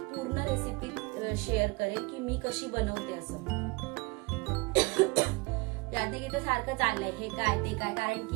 पूर्ण रेसिपी शेअर करेन की मी कशी बनवते असं. यादी सारखं चाललंय, हे काय ते काय, कारण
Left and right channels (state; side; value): quieter; left; 26.2 dB